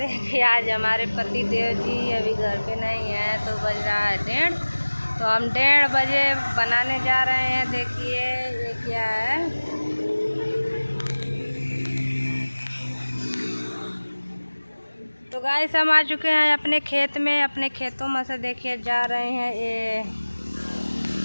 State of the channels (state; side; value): inverted; both; correlation -1.00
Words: कि आज हमारे पति देव जी अभी घर पे नहीं हैं, तो बज रहा है 1:30। तो हम 1:30 बजे बनाने जा रहे हैं। देखिए ये क्या है। तो गाइस हम आ चुके हैं अपने खेत में। अपने खेतों में से देखिए जा रहे हैं ये